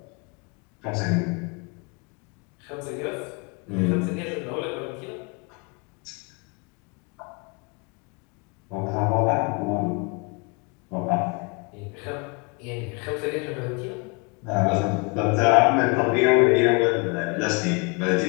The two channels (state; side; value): quieter; right; 30.8 dB